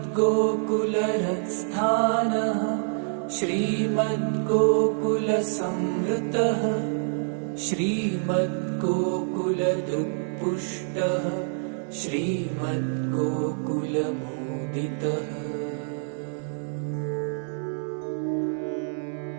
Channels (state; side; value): silent; left; digital silence